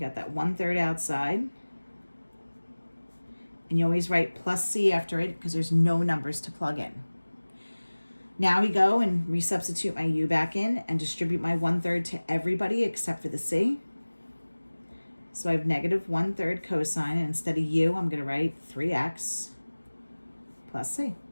that 1/3 outside. And you always write plus c after it because there's no numbers to plug in. Now we go and resubstitute my u back in and distribute my 1/3 to everybody except for the c. So I have negative 1/3 cosine, and instead of u, I'm going to write 3x plus c.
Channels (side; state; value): both; inverted; correlation -1.00